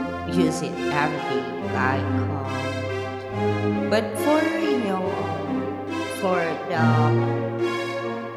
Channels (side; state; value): both; identical; correlation 1.00